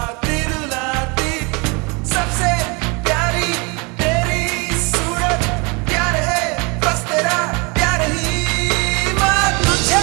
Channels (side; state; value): left; quieter; 29.9 dB